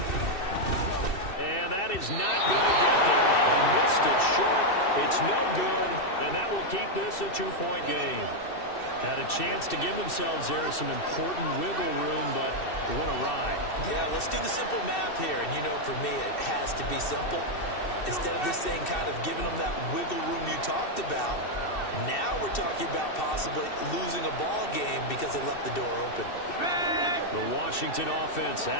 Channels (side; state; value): right; late; 2.7 ms